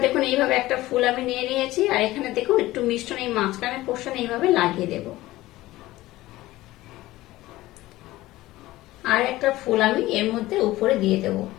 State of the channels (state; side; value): quieter; right; 17.3 dB